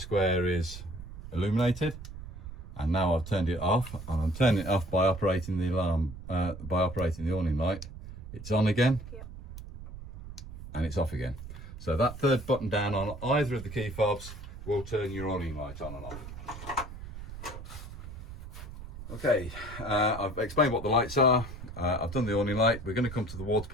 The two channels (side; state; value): right; noise; rumble, 11 dB below the sound